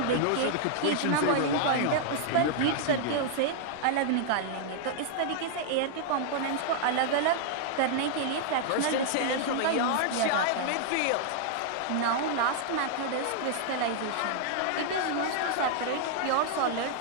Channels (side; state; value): both; different; correlation -0.01